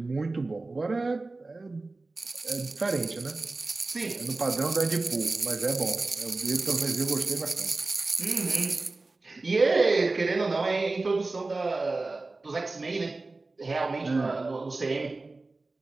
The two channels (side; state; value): left; quieter; 3.4 dB